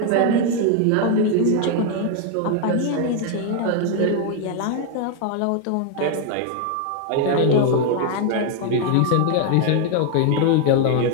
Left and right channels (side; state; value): both; different; correlation 0.00